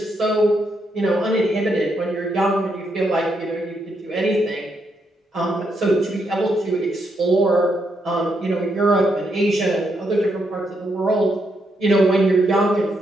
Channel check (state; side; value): normal; both; correlation 0.79